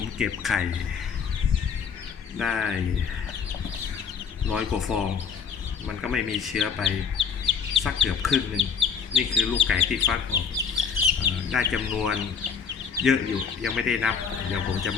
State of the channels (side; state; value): right; quieter; 6.5 dB